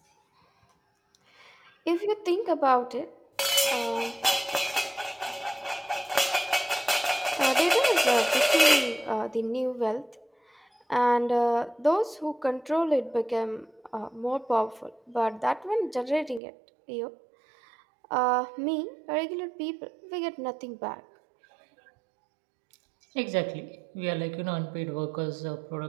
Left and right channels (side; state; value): left; drops out; at 16.4 s